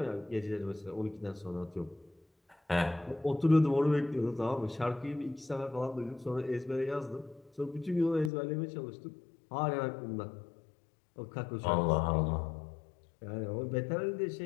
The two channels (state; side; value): drops out; right; at 8.3 s